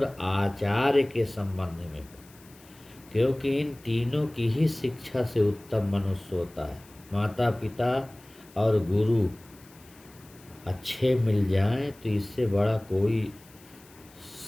आचार्य के संबंध में हो, क्योंकि इन तीनों की ही शिक्षा से उत्तम मनुष्य होता है। माता पिता और गुरु अच्छे मिल जाएं तो इससे बड़ा कोई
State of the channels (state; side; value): noise; left; hiss, 25 dB below the sound